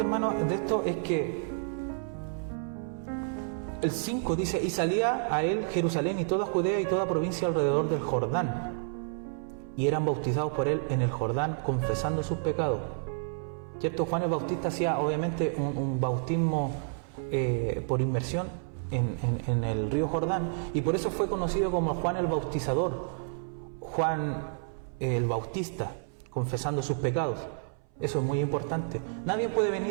hermano, de esto es que el 5 dice, y salía a él Jerusalén y toda Judea y toda provincia alrededor del Jordán, y eran bautizados por él en el Jordán, confesando sus pecados. ¿Cierto? Juan el Bautista hacía obviamente un bautismo por inmersión en el río Jordán, y por eso fue conocido como Juan el Bautizador, Juan el Bautista, confesando sus pecados. Eso es muy importante. Nadie puede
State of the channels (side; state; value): left; silent; 58 dB below the other